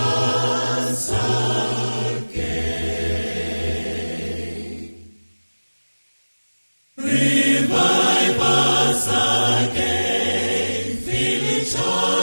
again. Revive us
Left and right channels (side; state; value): both; inverted; correlation -1.00